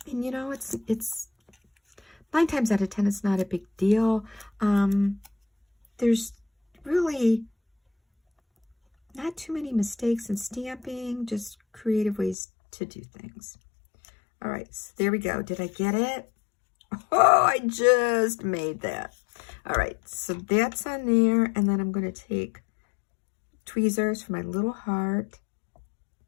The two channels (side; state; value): right; drops out; at 12.4 s